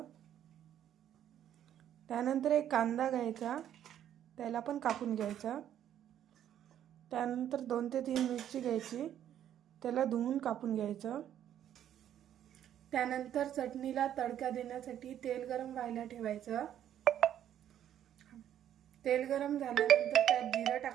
त्यानंतर एक कांदा घ्यायचा, त्याला पण कापून घ्यायचा। त्यानंतर 2 ते 3 मिरची घ्यायची, त्याला धुवून कापून घ्यायचं। त्यानंतर चटणीला तडका देण्यासाठी तेल गरम व्हायला ठेवायचं। तेल गरम झाल्यानंतर त्यात जिरं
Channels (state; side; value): quieter; left; 10.6 dB